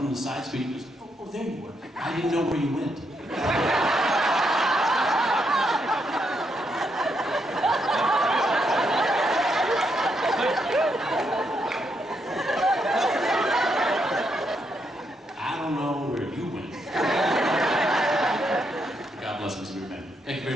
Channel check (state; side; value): normal; both; correlation 0.78